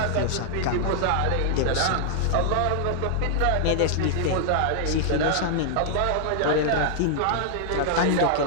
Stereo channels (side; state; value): both; different; correlation -0.01